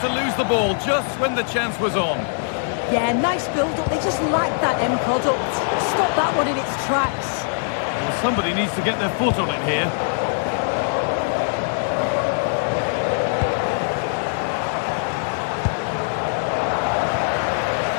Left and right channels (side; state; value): right; silent; digital silence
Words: to lose the ball just when the chance was on. Yeah, nice build-up. They just like that end product. Stop that one in its tracks. Well, somebody needs to get their foot on it here.